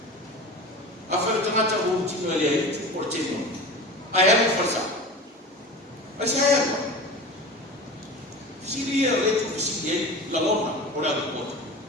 a fa tamata o ti no le ai tu ko te mo Ayah berfasa. Saya apa? Dia itu presiden laloma orang buat.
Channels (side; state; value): both; normal; correlation 0.33